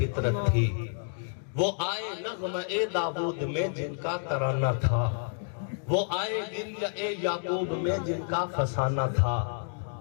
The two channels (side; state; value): right; silent; digital silence